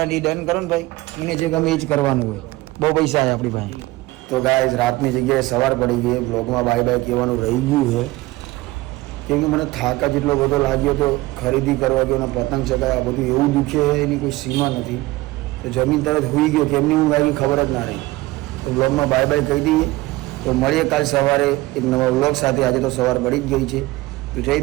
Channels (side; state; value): left; quieter; 19.5 dB